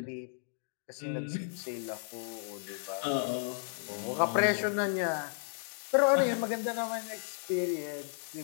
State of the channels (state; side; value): silent; right; digital silence